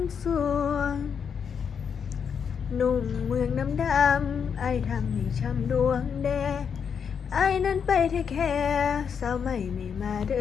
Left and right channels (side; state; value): right; quieter; 7.0 dB